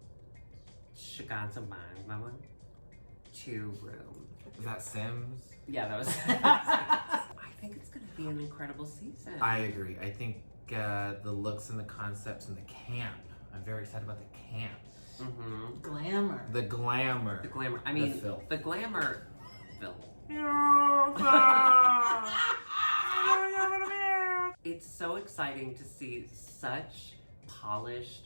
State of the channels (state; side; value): inverted; both; correlation -1.00